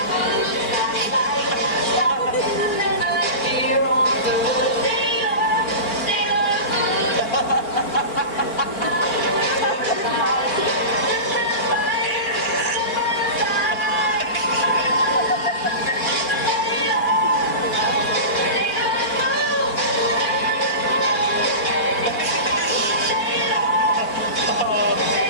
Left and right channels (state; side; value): late; right; 4.4 ms